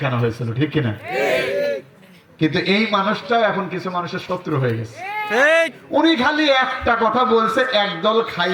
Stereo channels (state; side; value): identical; both; correlation 1.00